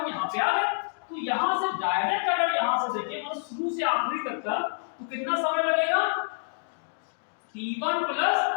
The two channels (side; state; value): right; silent; digital silence